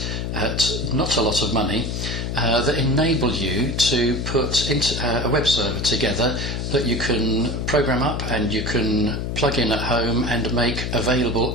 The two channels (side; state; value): left; noise; hum, 3 dB below the sound